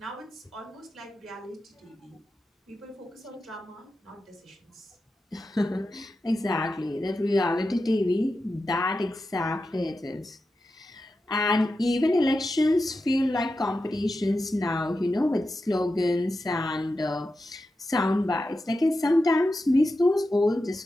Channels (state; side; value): normal; both; correlation 0.90